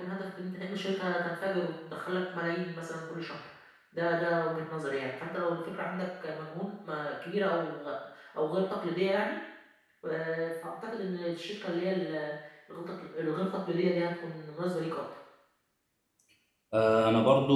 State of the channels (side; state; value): both; identical; correlation 1.00